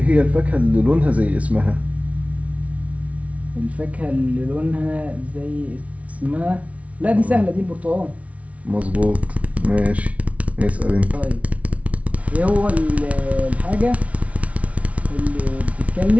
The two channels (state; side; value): late; left; 0.065 ms